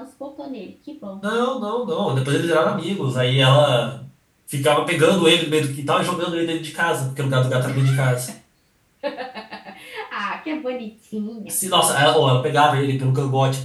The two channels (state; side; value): identical; both; correlation 1.00